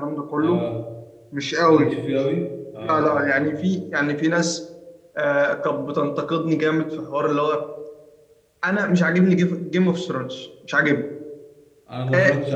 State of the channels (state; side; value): identical; both; correlation 1.00